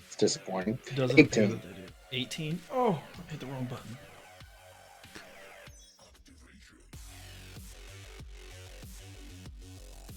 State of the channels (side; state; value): both; identical; correlation 1.00